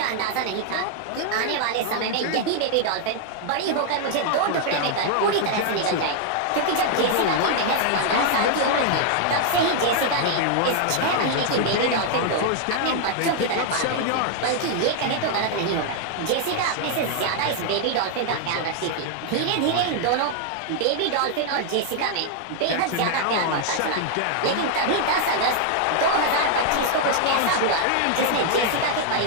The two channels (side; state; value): both; different; correlation 0.00